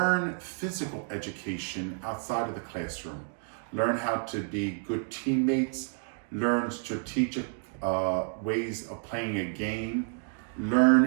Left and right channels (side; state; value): left; silent; 58 dB below the other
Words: physical education outside of the classroom. Learn how to be good teammates, learn strategic ways of playing a game,